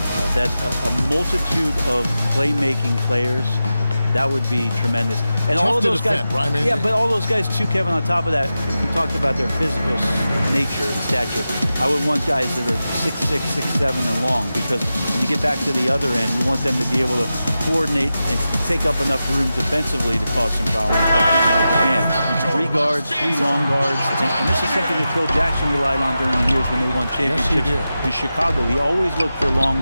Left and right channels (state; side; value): inverted; both; correlation -0.92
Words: that a multitude of playmaking players, that would be tremendous. And tough all of those guys, defend, right? yeah, but all those guys too, Kevin, on top of that, if we talked about their physical nature and stature, I would want guys that are 6'6", 6'7", and long, because when you get back to the other end, you want them to be able to coordinate and take up enough room defensively to cause some problems. But man, 3 guards, 3 long guards, and this is something that Phil Jackson relied on during the years when they won championships in Chicago. He always looked for